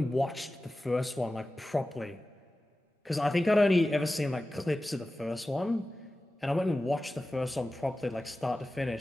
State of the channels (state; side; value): normal; both; correlation 0.95